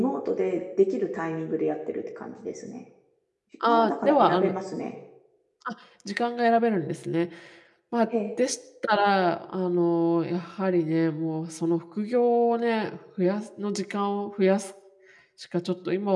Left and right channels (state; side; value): identical; both; correlation 1.00